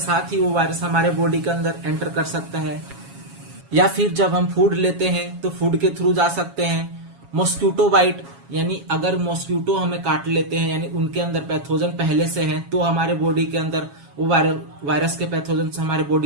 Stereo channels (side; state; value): left; late; 7.2 ms